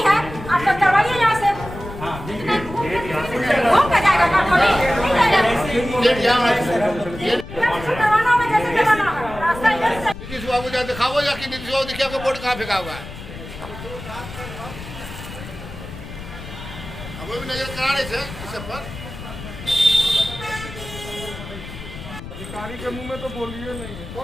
है, आप तो करवाइए यहाँ से। नीतीश बाबू जा दिखाओ या कि नीतीश बाबू देखिए आपका बोर्ड कहाँ फेंका हुआ है। अब भी नजर करा रहे थे इस सब पर। अधिकारी के मुंह में तो बोलिए नहीं,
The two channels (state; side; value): noise; left; rumble, 12 dB below the sound